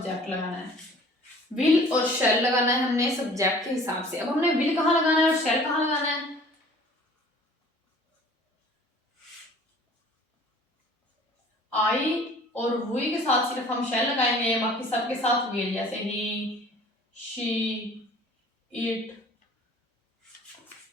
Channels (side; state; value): both; normal; correlation 0.50